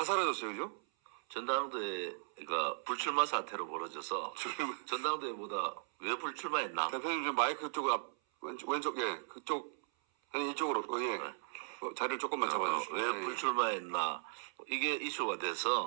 사라졌어요, 그죠? 전당대회가 불출마 사태로 벌어져서 전당대회보다 왜 불출마했나? 대표님 좀 마이크 쪽으로 왼쪽 예 그쪽 아니 이쪽으로 예 네. 자리를 조금만 잡아주시죠. 왜 불출마했나? 이게 이슈가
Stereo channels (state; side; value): silent; left; 53 dB below the other